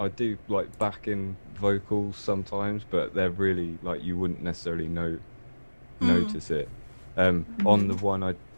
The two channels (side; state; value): both; inverted; correlation -1.00